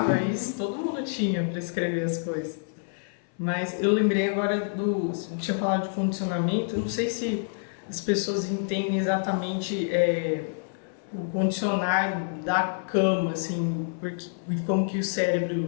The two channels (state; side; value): silent; right; 60 dB below the other